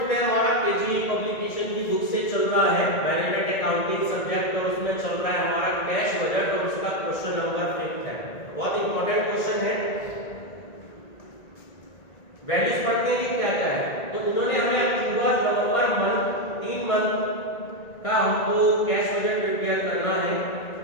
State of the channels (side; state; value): right; late; 1.9 ms